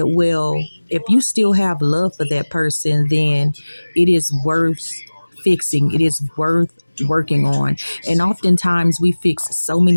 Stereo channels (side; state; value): both; inverted; correlation -1.00